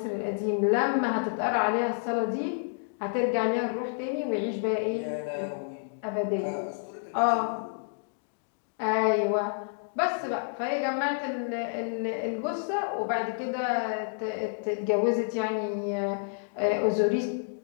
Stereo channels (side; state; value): right; silent; digital silence